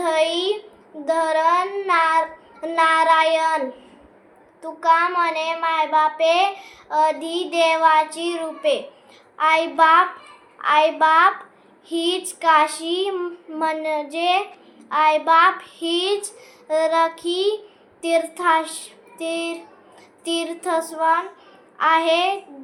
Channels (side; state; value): both; identical; correlation 1.00